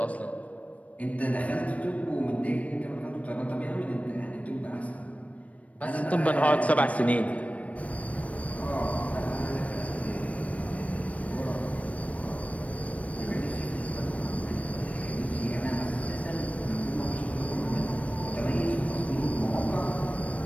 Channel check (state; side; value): late; right; 0.066 ms